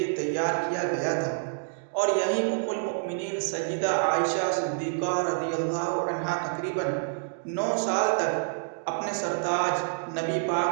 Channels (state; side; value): silent; left; digital silence